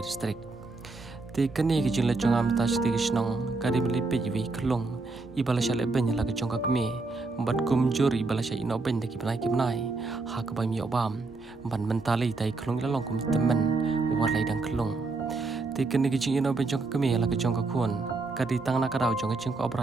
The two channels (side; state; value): left; quieter; 3.7 dB